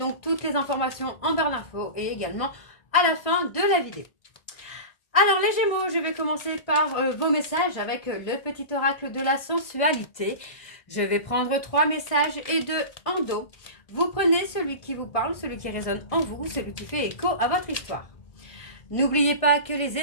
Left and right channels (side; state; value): right; late; 1.6 ms